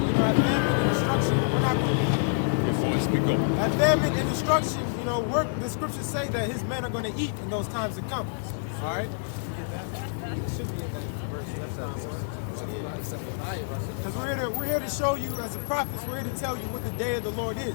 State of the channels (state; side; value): silent; right; digital silence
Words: at famine and destruction, we're not going to... At famine and destruction, you know, the scriptures say that his men are going to eat in those times to come. All right? It should be in that verse. Because we're here to show you, as a prophets, we're here to tell you what the day of the Lord